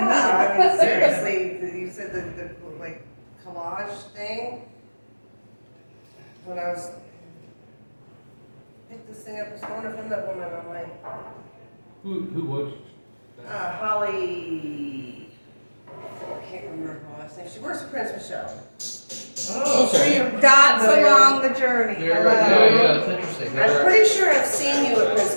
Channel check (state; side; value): inverted; both; correlation -1.00